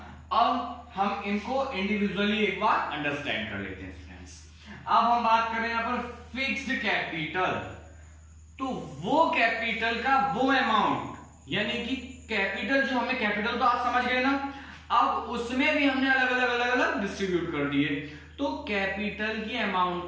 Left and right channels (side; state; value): both; identical; correlation 1.00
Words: अब हम इनको इंडिविजुअली एक बार अंडरस्टैंड कर लेते हैं फ्रेंड्स। अब हम बात करें यहां पर फिक्स्ड कैपिटल। तो वो कैपिटल का वो अमाउंट, यानी कि कैपिटल जो हमें, कैपिटल तो आप समझ गए ना, अब उसमें भी हमने अलग अलग डिस्ट्रीब्यूट कर दिए। तो कैपिटल की अमाउंट